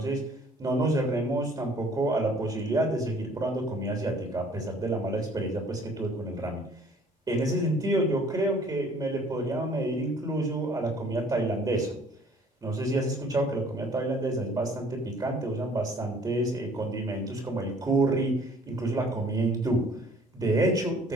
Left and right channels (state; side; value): normal; both; correlation 0.56